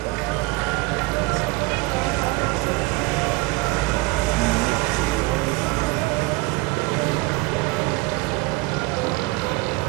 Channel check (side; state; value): left; quieter; 22.6 dB